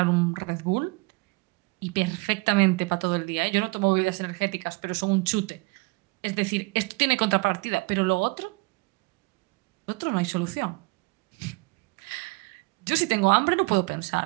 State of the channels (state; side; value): quieter; left; 27.1 dB